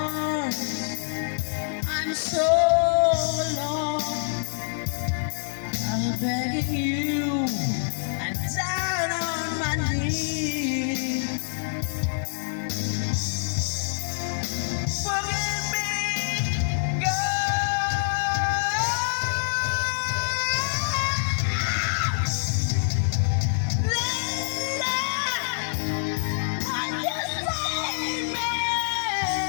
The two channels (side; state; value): right; silent; 59 dB below the other